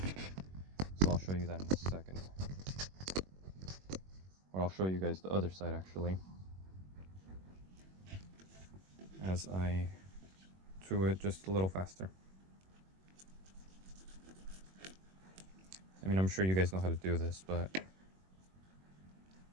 So I'll show you that in a second. Or I'll show you guys the other side actually, as I do it just a little faster. I mean, I'm sure you guys know how to do this, but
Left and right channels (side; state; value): left; late; 21 ms